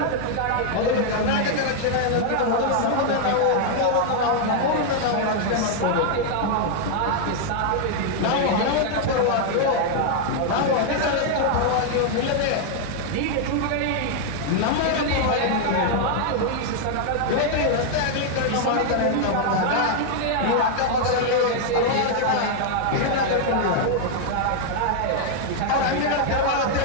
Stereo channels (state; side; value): different; both; correlation 0.00